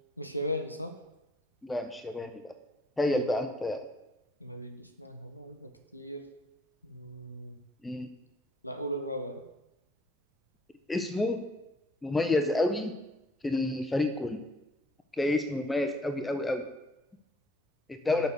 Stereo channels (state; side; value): normal; both; correlation 0.62